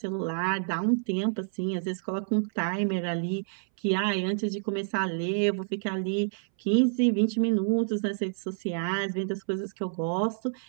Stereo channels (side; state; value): left; silent; 59 dB below the other